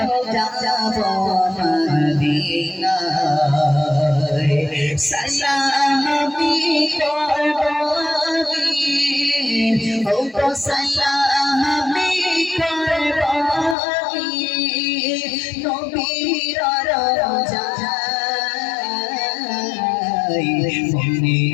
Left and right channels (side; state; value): right; drops out; at 13.8 s